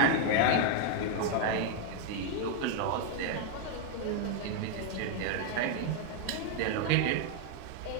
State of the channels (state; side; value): different; both; correlation 0.00